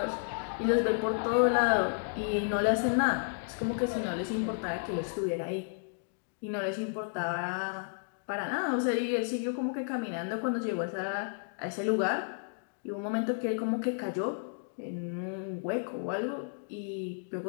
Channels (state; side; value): silent; right; digital silence